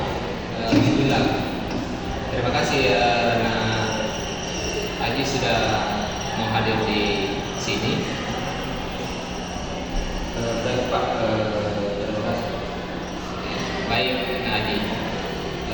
Bismillah. Terima kasih karena Aji sudah mau hadir di sini. Baik Pak, terima kasih. Baik, Nak Aji.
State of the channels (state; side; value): identical; both; correlation 1.00